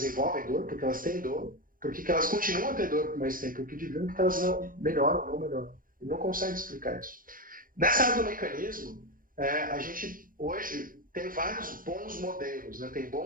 dor, porque elas têm dor, porque elas continuam a ter dor por mais tempo que deviam, porque elas não melhoram, não melhoram. Ele não consegue explicar isso. Nessa área do mecanismo, a gente hoje tem vários bons modelos. Né? Tem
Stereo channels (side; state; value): left; late; 0.40 ms